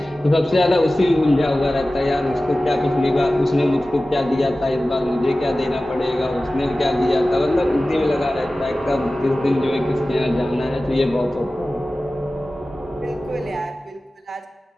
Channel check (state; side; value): normal; both; correlation 0.96